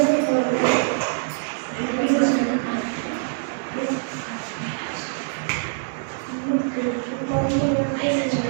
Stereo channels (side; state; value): left; silent; 63 dB below the other